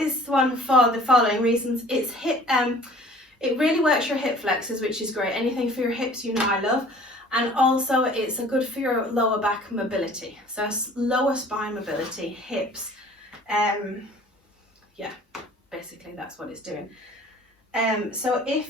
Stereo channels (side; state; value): both; normal; correlation 0.49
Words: one for the following reasons. It's it really works your hip flexors, which is great. Anything for your hips, you know I love. And also it's good for your lower back mobility. So lower spine mobility, hips. Yeah, basically that's what it's doing. So